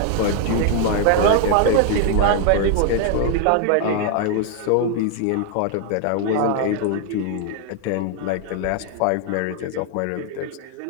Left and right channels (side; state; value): both; different; correlation 0.00